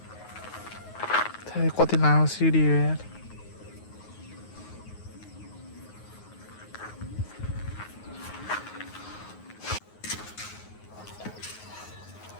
कति लामो सिडी हो यार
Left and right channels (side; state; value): right; late; 9.5 ms